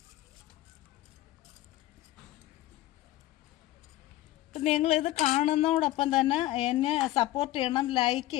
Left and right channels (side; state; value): right; quieter; 15.9 dB